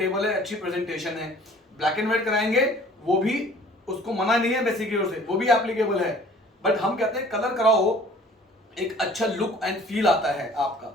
है, अच्छी प्रेजेंटेशन है। ब्लैक एंड व्हाइट कराएंगे वो भी, उसको मना नहीं है बेसिक की ओर से, वो भी एप्लीकेबल है। बट हम कहते हैं कलर कराओ, एक अच्छा लुक एंड फील आता है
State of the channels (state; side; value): normal; both; correlation 0.51